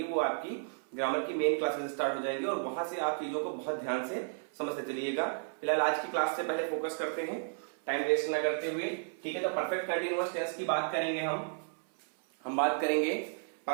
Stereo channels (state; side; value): silent; left; 56 dB below the other